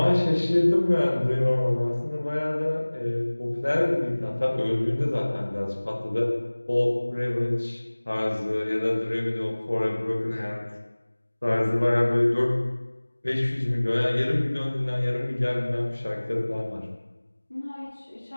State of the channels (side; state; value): both; inverted; correlation -1.00